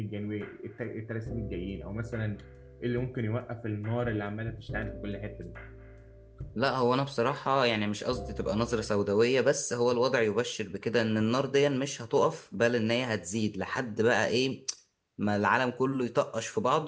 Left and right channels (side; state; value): both; identical; correlation 1.00